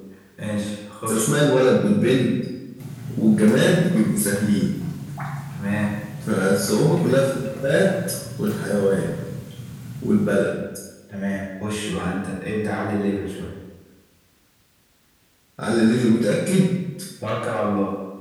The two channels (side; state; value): both; identical; correlation 1.00